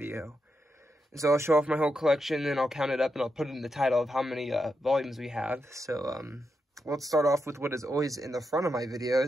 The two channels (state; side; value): normal; both; correlation 0.85